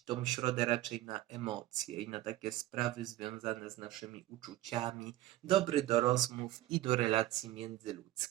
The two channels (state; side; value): quieter; left; 15.4 dB